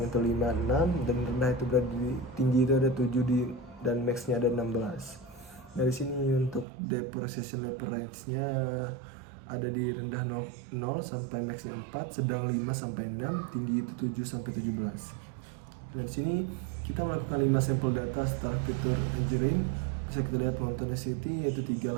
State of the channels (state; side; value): drops out; left; at 6.7 s